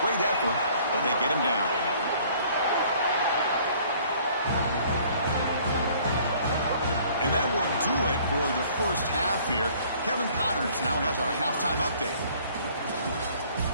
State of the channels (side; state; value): both; inverted; correlation -0.56